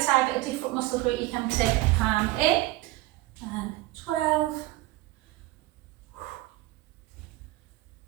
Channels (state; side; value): quieter; left; 17.7 dB